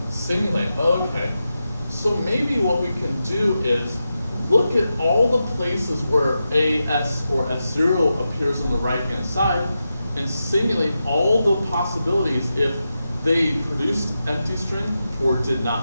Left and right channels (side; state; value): both; inverted; correlation -0.90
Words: Simulate. Okay. So maybe what we can do is look at all the places where A, S, or S0 appears on the right-hand side and simulate all the possibilities if they produced empty string or did